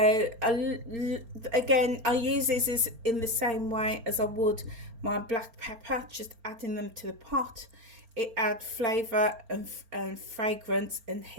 again, I use these in the same way as I would my black pepper, just adding them to the pot. It adds flavour and fragrance and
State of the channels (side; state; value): left; late; 4.4 ms